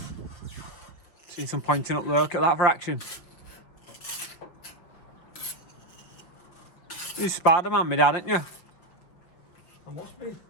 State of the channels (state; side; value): late; right; 5.7 ms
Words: See some pointing up there. Look at that for action. You're Spider-Man, my dad, aren't you? I must be. Do